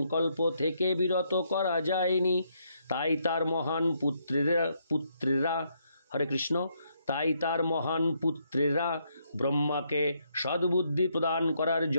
থেকে বিরত করা যায়নি। তাই তার মহান পুত্রেরা হরে কৃষ্ণ তাই তার মহান পুত্রেরা ব্রহ্মাকে সদ্বুদ্ধি প্রদান করার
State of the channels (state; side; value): inverted; both; correlation -0.75